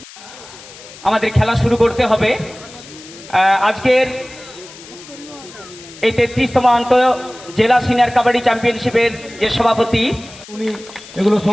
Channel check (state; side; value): noise; left; hiss, 18 dB below the sound